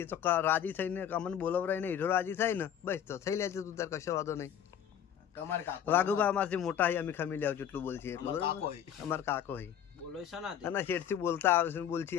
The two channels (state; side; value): quieter; right; 9.4 dB